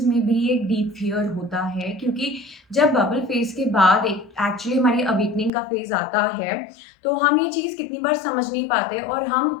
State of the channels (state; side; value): drops out; right; at 5.5 s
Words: में भी एक डीप फियर होता है, क्योंकि जब बबल फेज के बाद एक एक्चुअली हमारी अवेकनिंग का फेज आता है, तो हम ये चीज़ कितनी बार समझ नहीं पाते और